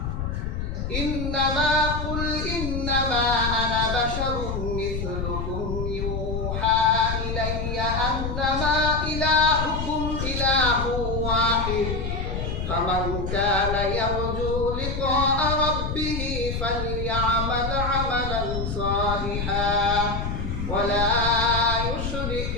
ইন্নামা কুল ইন্নামা আনা বাশারুম মিথলুকুম ইউহা ইলাইয়া আন্নামা ইলাহুকুম ইলাহু ওয়াহিদ ফামান কানা ইয়ারজু লিকাআ রাব্বিহি ফালইআমাল আমালান সালিহান ওয়ালা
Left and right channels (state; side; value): noise; left; rumble, 3 dB below the sound